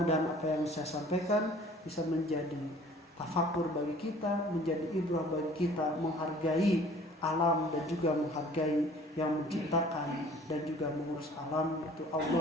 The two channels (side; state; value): both; normal; correlation 0.51